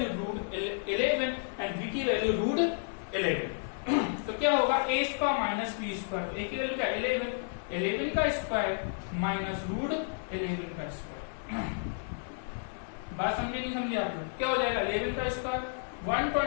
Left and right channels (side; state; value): right; silent; digital silence